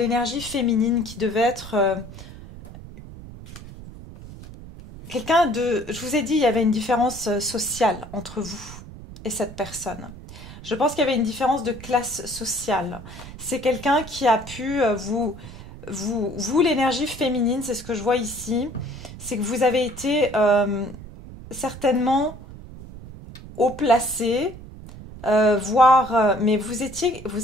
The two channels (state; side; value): noise; right; rumble, 15 dB below the sound